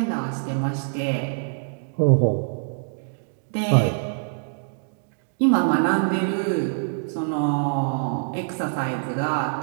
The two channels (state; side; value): silent; left; digital silence